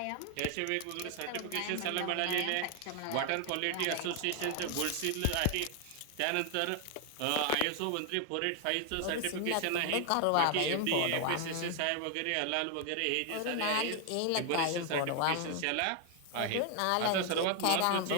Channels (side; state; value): both; different; correlation 0.00